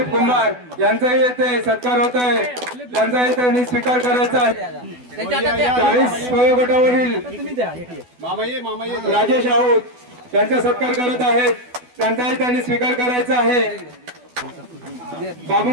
कुंभार यांचाही येथे सत्कार होत आहे त्यांचाही त्यांनी स्वीकार करायचा आहे 40 वयोगटावरील राजेश आऊत यांचा सत्कार करत आहेत त्यांचाही त्यांनी स्वीकार करायचा आहे बाबू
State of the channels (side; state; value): left; late; 12 ms